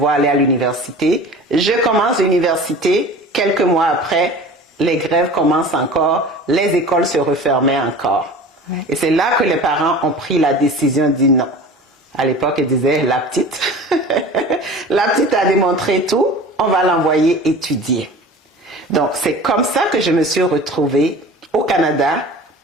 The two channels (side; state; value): both; normal; correlation 0.39